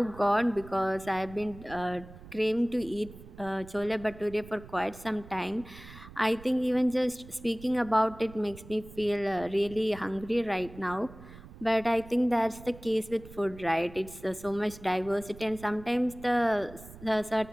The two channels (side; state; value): right; noise; rumble, 17 dB below the sound